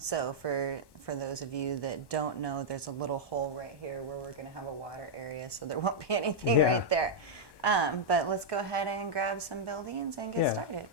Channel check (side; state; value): right; late; 1.2 ms